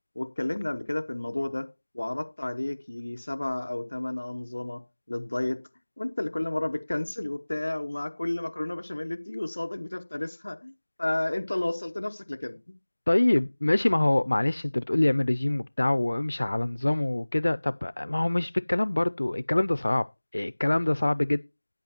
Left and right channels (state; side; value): inverted; both; correlation -1.00